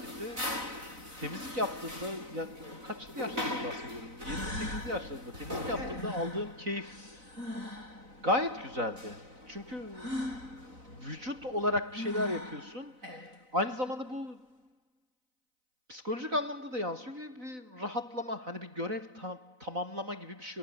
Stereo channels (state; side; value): late; left; 4.0 ms